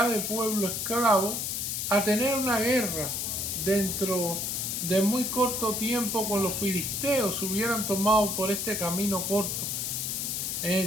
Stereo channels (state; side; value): noise; left; hiss, 2 dB below the sound